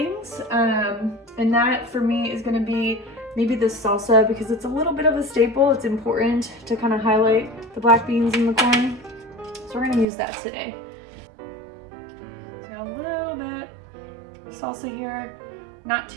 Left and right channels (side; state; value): left; drops out; at 10.1 s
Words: And that for me is going to be maybe the salsa, because it's a little bit of a staple. It's important to kind of highlight the black beans and the corn. So we're going to use that today. So a little bit of salsa here, not